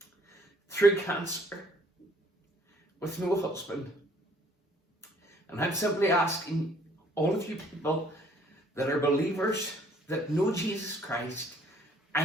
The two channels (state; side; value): normal; both; correlation 0.60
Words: through cancer with no husband. And I'm simply asking all of you people that are believers, that know Jesus Christ,